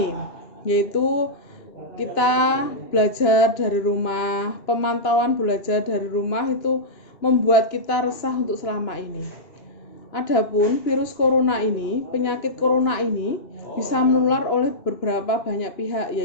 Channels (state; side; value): late; right; 2.9 ms